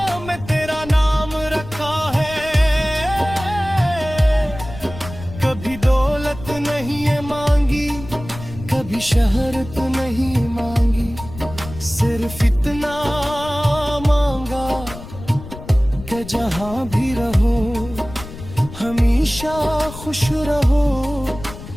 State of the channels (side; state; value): left; noise; rumble, 13 dB below the sound